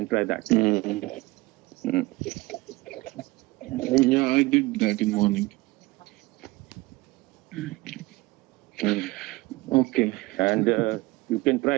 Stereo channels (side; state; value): left; quieter; 21.2 dB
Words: try that. Yeah, I did that in morning. Okay. And you can try